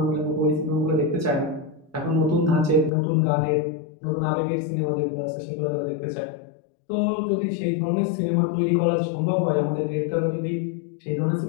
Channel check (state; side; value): drops out; right; at 2.9 s